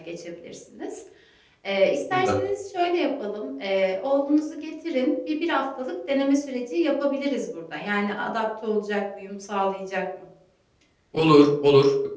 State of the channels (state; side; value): identical; both; correlation 1.00